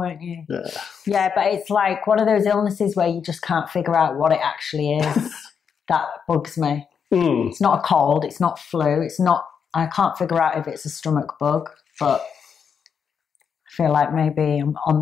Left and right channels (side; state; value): right; quieter; 6.9 dB